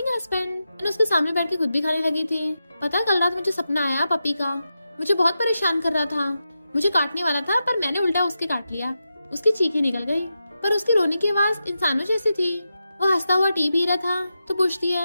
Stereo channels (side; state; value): both; inverted; correlation -0.89